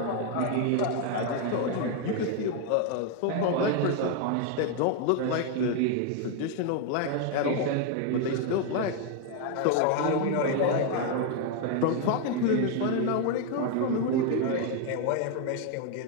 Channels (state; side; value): different; both; correlation 0.01